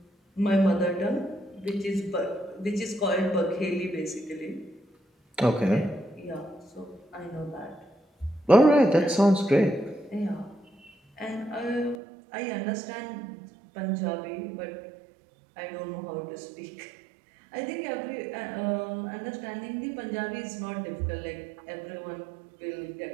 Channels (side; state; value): left; drops out; at 12.0 s